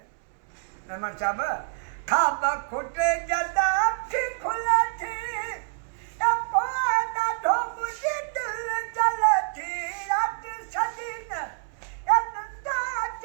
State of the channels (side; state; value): left; silent; 60 dB below the other